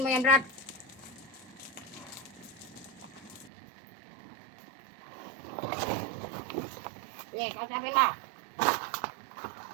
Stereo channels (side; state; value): left; drops out; at 3.5 s